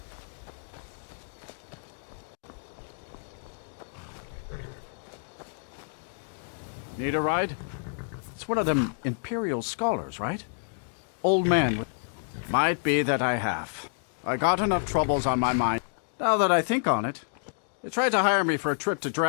Need a ride? It's one of them Imperial scholars, right? Old man. Might be that I have. I got enough troubles on my mind. Now that I think on it, they tried to hire me for a trip to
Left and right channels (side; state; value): right; silent; digital silence